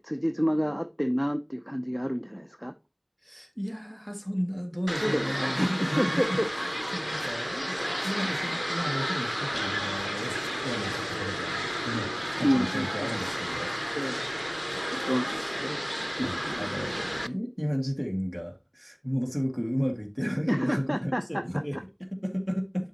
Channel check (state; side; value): identical; both; correlation 1.00